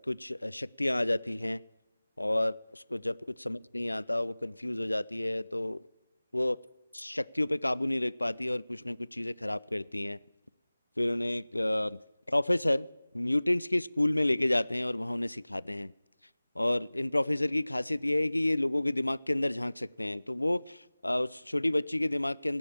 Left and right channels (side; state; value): both; inverted; correlation -1.00